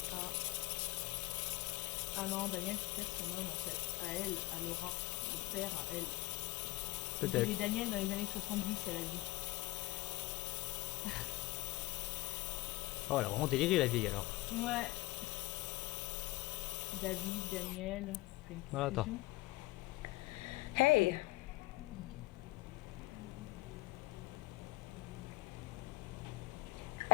Ah. Ah non, Daniel, c'est peut-être son homme en fait. À elle, à Laura. Le père, à elle. Peut-être. Et Daniel dans les années 70, elle a dit. Oh, elle a vraiment déliré, la vieille, alors. Ouais. David, Daniel. Fais une Voilà, attends. confusion. Hey.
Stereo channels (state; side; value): quieter; right; 20.0 dB